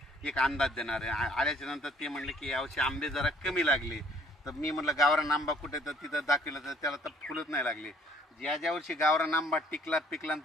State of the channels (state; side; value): normal; both; correlation 0.59